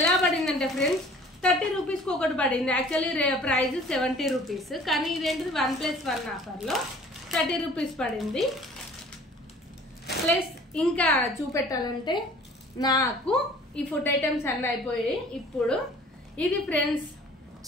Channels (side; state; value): both; normal; correlation 0.50